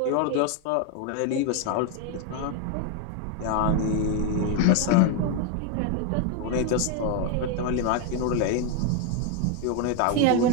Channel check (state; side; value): different; both; correlation 0.02